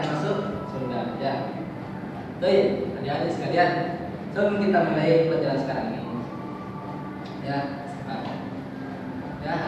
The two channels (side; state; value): both; identical; correlation 1.00